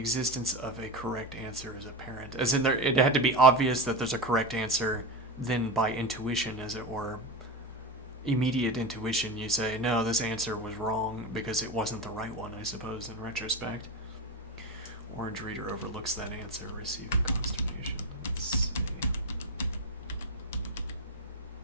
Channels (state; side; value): normal; both; correlation 0.18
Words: of a correct answer is apparent. As in, it had to be obvious that there's a correct answer, then by intuition, as it were, immediate intuition, you say, no, this answer was wrong because it wasn't the right one, I suppose, in retrospect. Orange reader overlooks that answer, receiving consternation. Let's see.